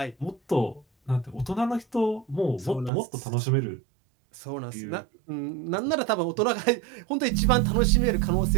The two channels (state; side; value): drops out; left; at 2.9 s